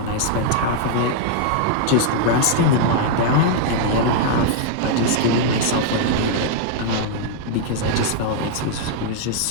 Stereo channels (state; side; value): different; both; correlation -0.01